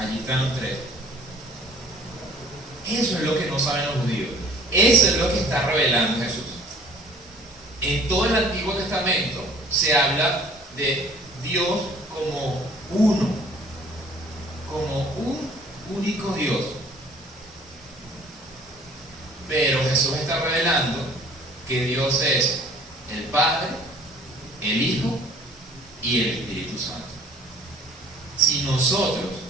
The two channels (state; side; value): normal; both; correlation 0.53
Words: están los tres. Eso es lo que no saben los judíos. Eso es lo que está revelando Jesús. En todo el Antiguo Testamento se habla de Dios como uno, como un único Dios. Pero Jesús está revelando que Dios es el Padre, el Hijo y el Espíritu Santo. Si nosotros